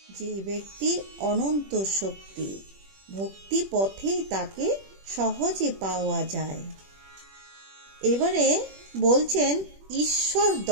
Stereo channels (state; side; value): late; left; 21 ms